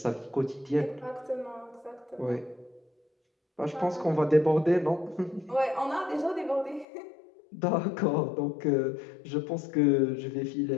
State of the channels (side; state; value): right; drops out; at 6.9 s